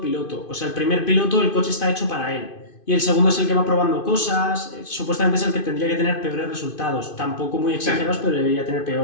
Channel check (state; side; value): late; right; 2.5 ms